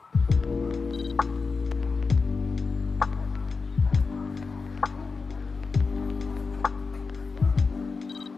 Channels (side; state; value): right; quieter; 4.5 dB